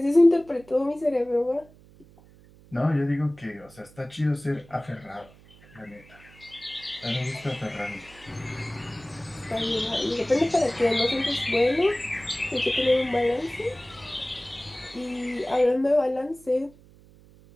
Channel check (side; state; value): right; noise; hum, 25 dB below the sound